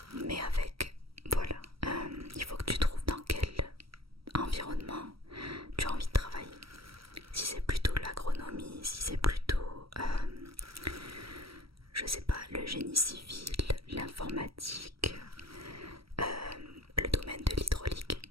Mais avec, voilà, il faut que tu trouves dans quel environnement tu as envie de travailler. Si c'est plutôt l'agronomie, si c'est plutôt, je sais pas, le génie civil, l'informatique, le domaine de l'hydraulique,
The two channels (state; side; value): late; left; 0.75 ms